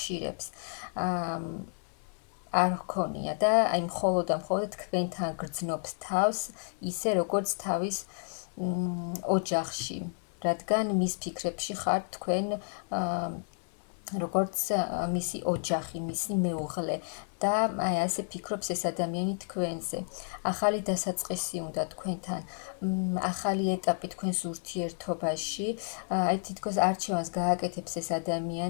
არ ჰქონია და აი მხოლოდ თქვენთან გრძნობს თავს, ისე როგორც თავის ოჯახში, რადგან მის ფიქრებში ხართ თქვენ როგორც მისი ოჯახი, მისი მეუღლე და აი ასე ფიქრობს ეს ადამიანი თქვენზე. ახალი დასაწყისი უნდა თქვენთან, ახალი ეტაპი თქვენს ურთიერთობაში, აი თითქოს არჩევანს გააკეთებს ეს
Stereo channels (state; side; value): silent; right; 57 dB below the other